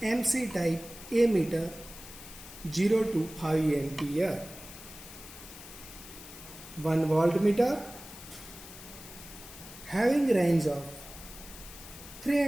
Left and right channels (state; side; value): noise; left; hiss, 15 dB below the sound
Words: MC type ammeter 0 to 5 ampere, one voltmeter having range of